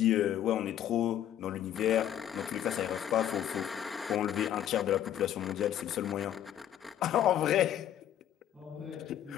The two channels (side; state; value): right; quieter; 10.9 dB